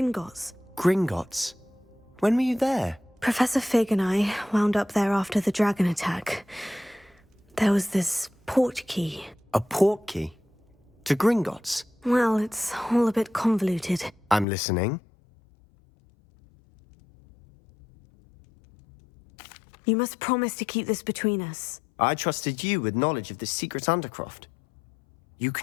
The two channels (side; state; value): right; drops out; at 14.5 s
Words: Gringotts? When were you there? Professor Fig and I wound up there after the dragon attack. There was this port key. A port key? To Gringotts? Well, it's all a bit convoluted. I'm listening. You must promise to keep this between us. I trusted you with knowledge of the secret Undercroft. You